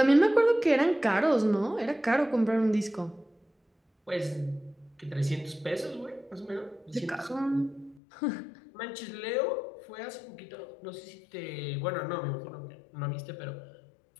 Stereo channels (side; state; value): right; drops out; at 8.0 s